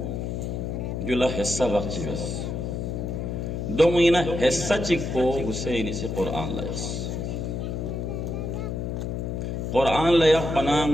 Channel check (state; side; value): noise; left; hum, 3 dB below the sound